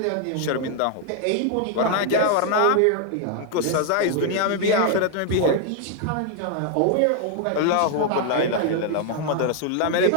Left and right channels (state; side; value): different; both; correlation 0.00